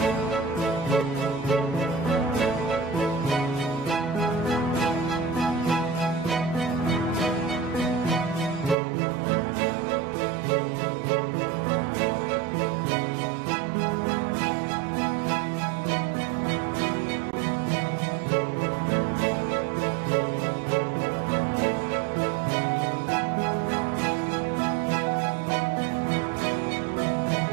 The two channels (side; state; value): left; drops out; at 8.8 s